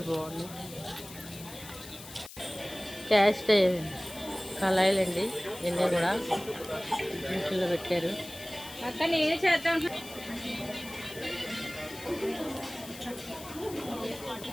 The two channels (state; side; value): noise; left; hiss, 15 dB below the sound